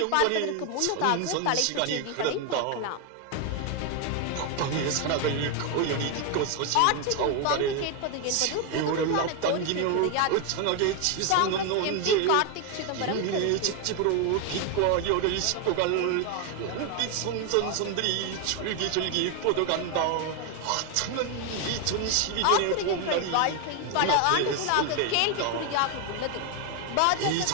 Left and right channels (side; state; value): both; different; correlation 0.01